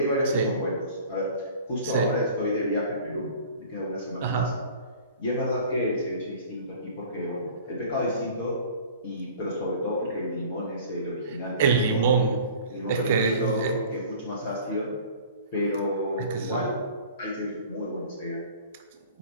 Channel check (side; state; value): both; inverted; correlation -0.45